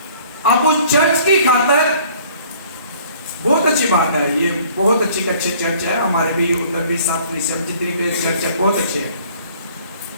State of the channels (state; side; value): inverted; both; correlation -0.55